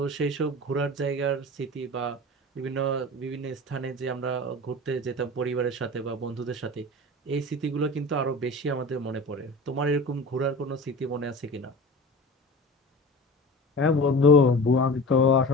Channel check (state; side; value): normal; both; correlation 0.35